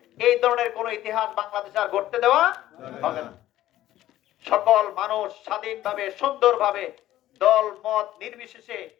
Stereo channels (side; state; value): right; quieter; 14.0 dB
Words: এই ধরনের কোন ইতিহাস বাংলাদেশে আর ঘটতে দেওয়া হবে না। সকল মানুষ স্বাধীনভাবে, সুন্দরভাবে, দল মত নির্বিশেষে